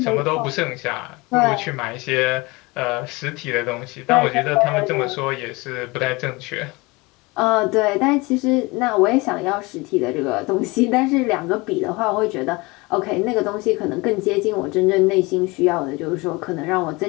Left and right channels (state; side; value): quieter; right; 24.4 dB